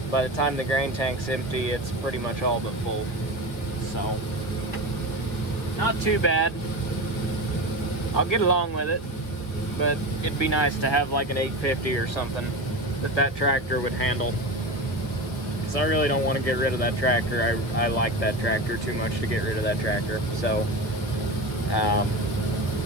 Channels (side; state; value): right; late; 1.6 ms